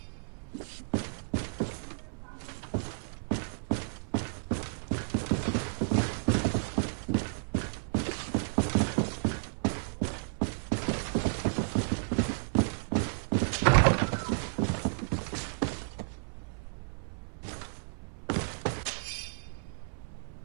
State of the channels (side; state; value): left; silent; 56 dB below the other